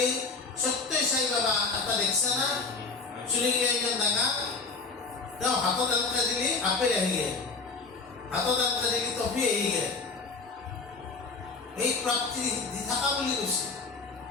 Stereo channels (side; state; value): right; quieter; 4.2 dB